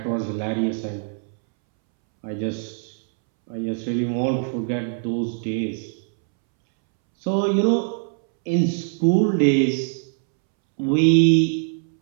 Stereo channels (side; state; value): left; silent; 64 dB below the other